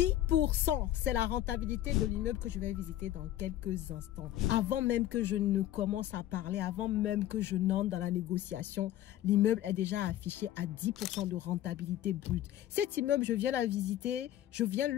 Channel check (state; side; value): quieter; right; 13.1 dB